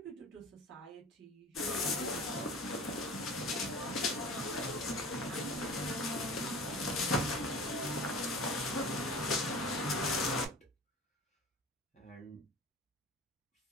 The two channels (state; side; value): normal; both; correlation 0.39